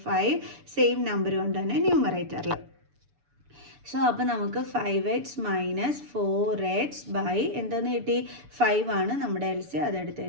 5 സെയിം നമ്പർ കൊണ്ട് തന്നെ ന്യൂമറേറ്ററിൽ. സോ അപ്പോൾ നമുക്ക് 5x മൈനസ് 4x ബൈ എന്തെന്ന് കിട്ടി? 5 ആണ് നമ്മുടെ എൽസിയം. അതെടുത്ത്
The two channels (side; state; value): left; late; 6.9 ms